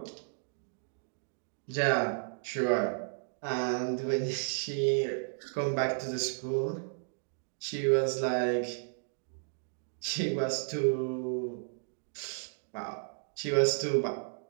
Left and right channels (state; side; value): silent; left; digital silence